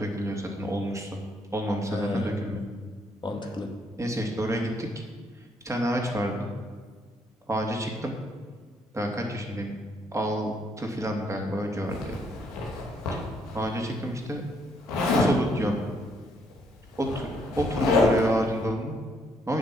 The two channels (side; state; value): both; normal; correlation 0.71